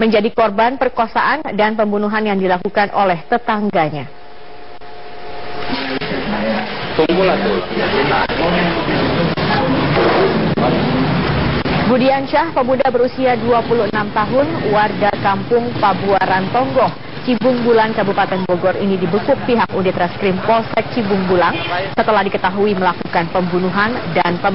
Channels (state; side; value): identical; both; correlation 1.00